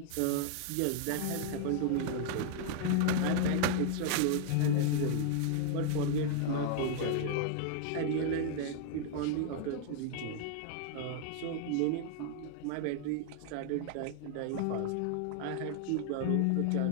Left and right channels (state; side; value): different; both; correlation 0.00